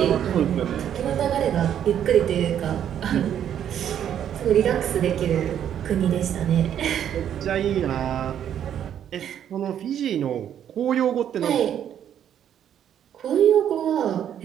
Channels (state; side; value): quieter; left; 9.8 dB